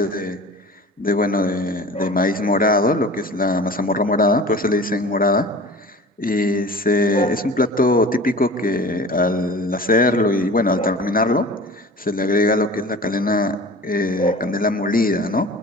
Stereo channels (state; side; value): normal; both; correlation 0.40